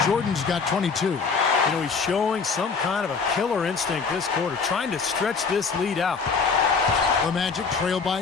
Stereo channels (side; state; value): right; quieter; 5.1 dB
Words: Jordan's got 22. You know, he's showing some kind of a killer instinct this quarter, trying to stretch this lead out. The Magic trail